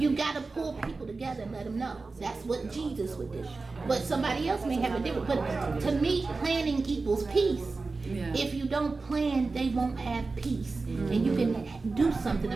got to pull people together and let them know. That's what Jesus would do. But somebody else may have a different, but to me, planning equals peace. Yeah. If you don't plan, they won't have peace. And you can do something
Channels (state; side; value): quieter; left; 3.9 dB